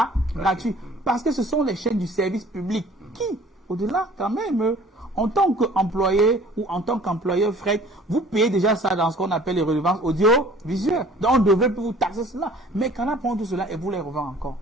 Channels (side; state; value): both; normal; correlation 0.51